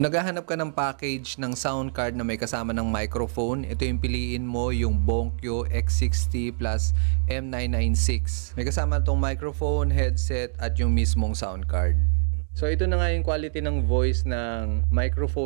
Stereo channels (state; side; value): silent; left; digital silence